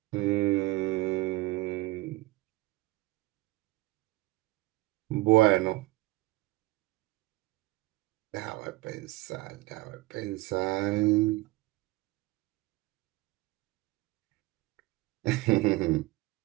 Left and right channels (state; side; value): quieter; left; 20.2 dB